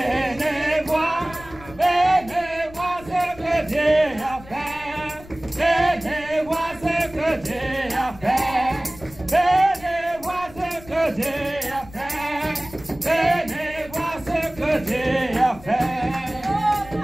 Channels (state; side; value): noise; left; rumble, 19 dB below the sound